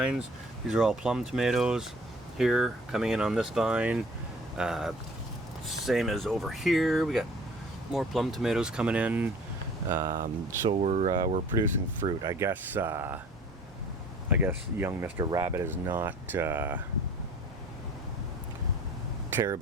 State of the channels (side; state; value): both; normal; correlation 0.49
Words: These are all plum tomatoes here coming in on this vine. Same as over here. We got more plum tomatoes coming in. So we're producing fruit. I guess young Mr. Rabbit is not